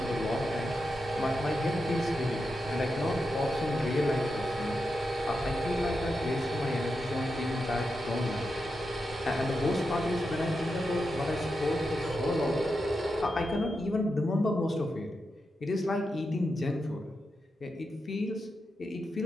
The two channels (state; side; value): normal; both; correlation 0.88